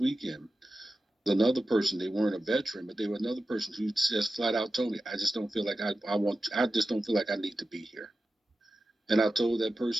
Another person, they weren't a veteran, but they were another person who just flat out told me, I just don't feel like I just don't feel like I need to be here. And I told that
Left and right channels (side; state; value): both; normal; correlation 0.93